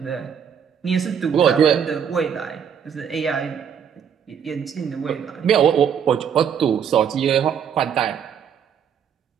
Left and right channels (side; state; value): left; quieter; 7.8 dB